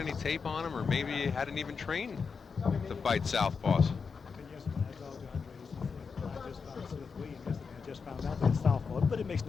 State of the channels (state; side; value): quieter; right; 5.4 dB